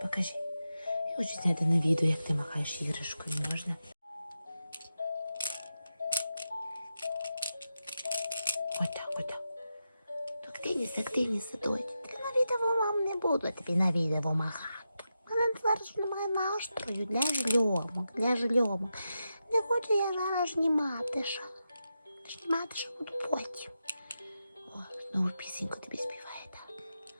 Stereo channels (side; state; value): both; inverted; correlation -0.88